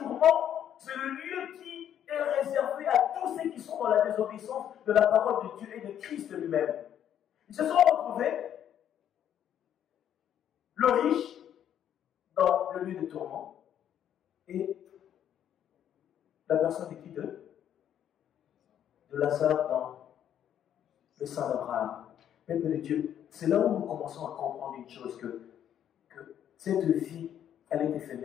c'est le lieu qui est réservé à tous ceux qui sont dans la désobéissance de la parole de Dieu et de Christ lui-même. Ils se sont retrouvés, le riche dans le lieu de tourment et la personne de qui de Lazare dans le sein d'Abraham. Peuple de Dieu, c'est là où nous commençons à comprendre une chose, que cette vie, elle est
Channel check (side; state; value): right; quieter; 10.0 dB